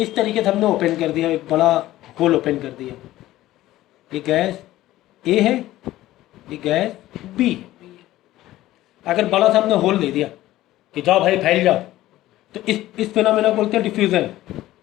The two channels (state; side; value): quieter; right; 15.4 dB